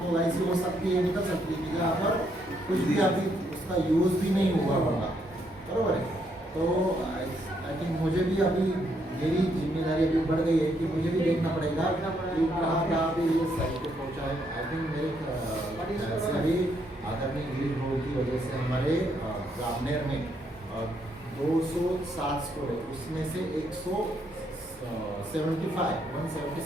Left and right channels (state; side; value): normal; both; correlation 0.74